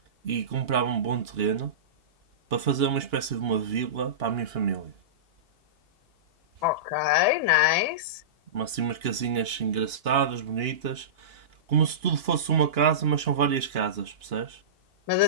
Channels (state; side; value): late; left; 2.9 ms